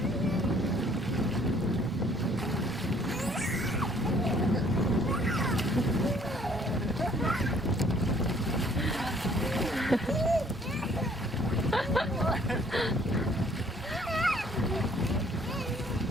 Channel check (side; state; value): both; normal; correlation 0.60